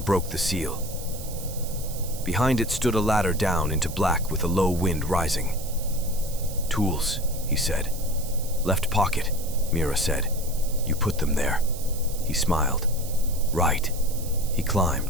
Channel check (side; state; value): right; noise; hiss, 13 dB below the sound